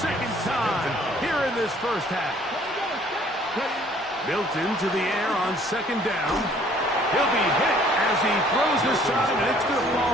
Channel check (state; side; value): normal; both; correlation 0.58